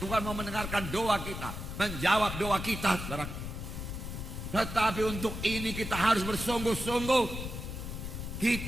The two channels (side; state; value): left; noise; rumble, 6 dB below the sound